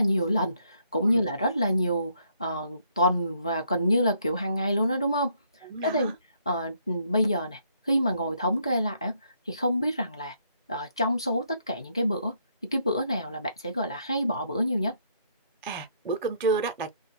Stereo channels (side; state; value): both; inverted; correlation -0.70